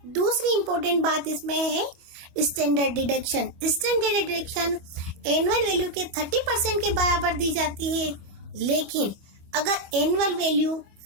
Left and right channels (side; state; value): left; late; 25 ms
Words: दूसरी इंपॉर्टेंट बात इसमें है standard deduction. Standard deduction annual value के 30% के बराबर दी जाती है, लेकिन अगर एनुअल वैल्यू